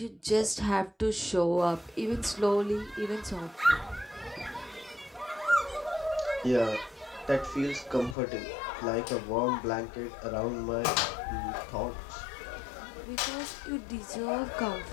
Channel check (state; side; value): drops out; right; at 8.2 s